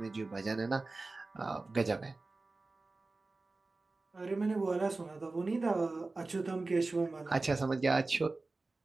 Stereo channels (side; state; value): left; quieter; 3.4 dB